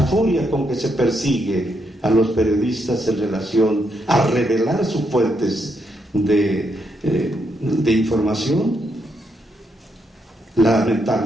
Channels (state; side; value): normal; both; correlation 0.79